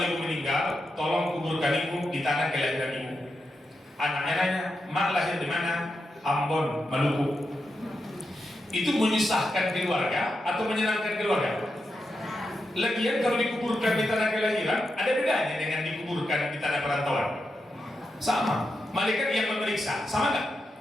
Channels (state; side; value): normal; both; correlation 0.87